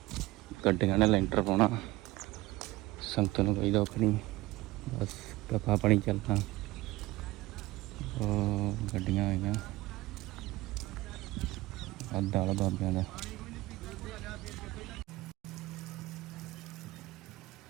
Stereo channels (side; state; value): left; quieter; 19.0 dB